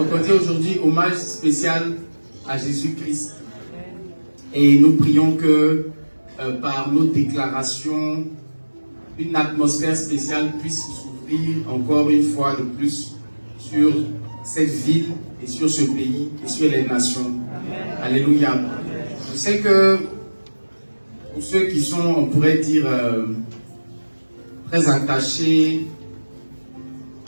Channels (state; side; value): inverted; both; correlation -1.00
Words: on dit aujourd'hui hommage spécial à Jésus-Christ. Et nous prions que par nos déclarations, une atmosphère spéciale puisse s'ouvrir encore une fois de plus sur cette ville et sur ce pays et sur les nations. Alléluia. Je sais que pour ceux qui sont, on pourrait dire, très attachés